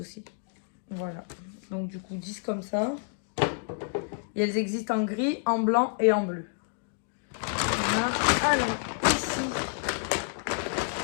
aussi. Voilà. Donc, du coup, 10 comme ça. Et elles existent en gris, en blanc et en bleu. Voilà. Alors, ici,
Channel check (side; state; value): right; silent; digital silence